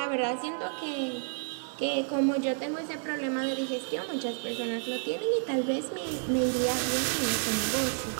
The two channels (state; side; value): silent; left; 58 dB below the other